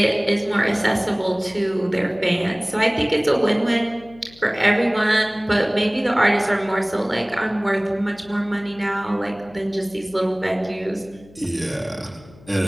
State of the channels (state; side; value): noise; left; hum, 24 dB below the sound